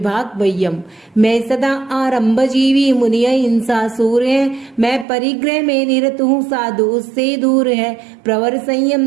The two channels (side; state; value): left; drops out; at 5.1 s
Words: वयम, मैं सदा आरंभ जीवी मुनिय हिंसा सूर है, मैं परिग्रह में निरत हूँ साधु उससे दूर है, प्रवर